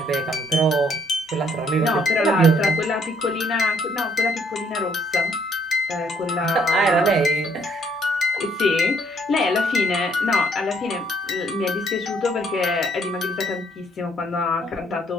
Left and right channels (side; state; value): both; normal; correlation 0.67